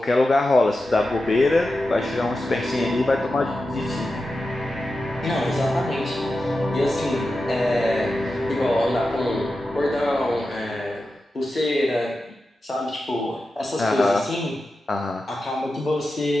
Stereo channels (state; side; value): normal; both; correlation 0.91